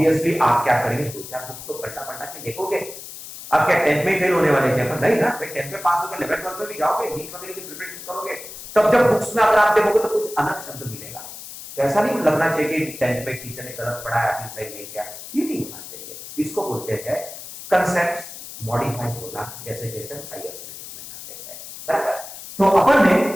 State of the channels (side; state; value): left; noise; hiss, 13 dB below the sound